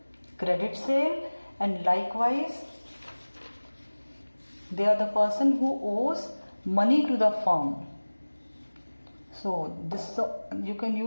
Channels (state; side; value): inverted; both; correlation -1.00